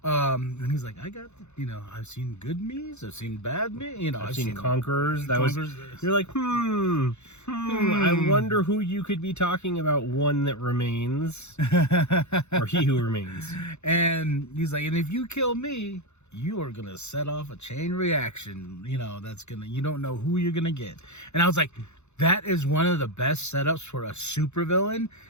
and he's like, I got, I've seen good me's, I've seen bad me, I've seen Conquerors. You're like, I wonder who you could be talking about, one that remains, or he who remains. And he's like, and if you kill me, you are gonna set off a chain reaction, that's gonna, you don't know who you're gonna get. And I was like, that is one of the best setups for a supervillain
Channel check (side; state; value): right; late; 0.82 ms